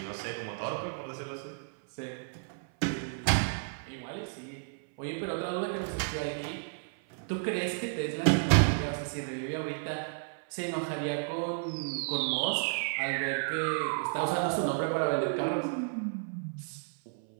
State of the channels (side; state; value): left; silent; 56 dB below the other